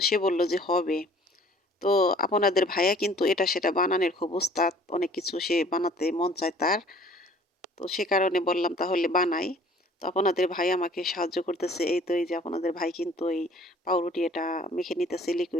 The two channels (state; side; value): normal; both; correlation 0.53